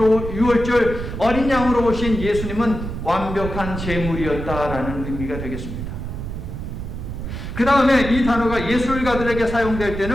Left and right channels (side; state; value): right; noise; rumble, 7 dB below the sound